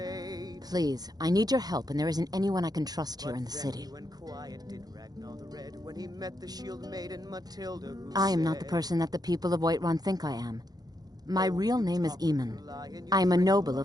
Please, I need your help and there isn't anyone I can trust here in the Then city. he went quiet, did Ragnar the Red, when he met the shield maiden Matilda, who I am not the said, person that the people of Whiterun think I am. My real name is Eamon. I am a noble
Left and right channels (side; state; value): left; late; 0.19 ms